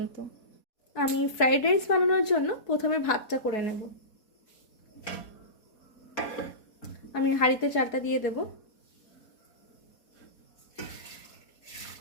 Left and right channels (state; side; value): late; right; 4.2 ms